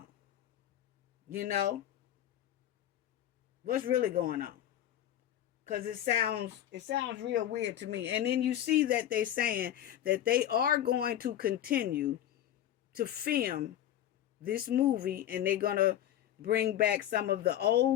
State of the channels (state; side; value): quieter; right; 11.6 dB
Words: You know? What's really going on? Because it sounds real weird to me. And then you see that they're saying that they are going to continue to film this movie, and they're going to bring back some of the